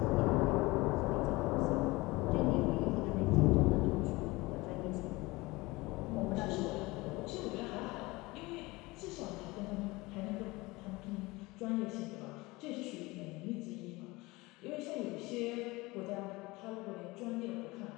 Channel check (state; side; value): quieter; right; 22.2 dB